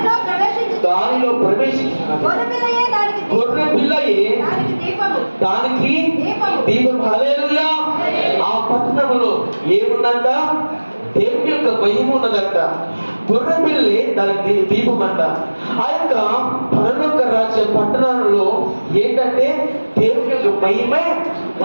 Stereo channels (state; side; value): inverted; both; correlation -1.00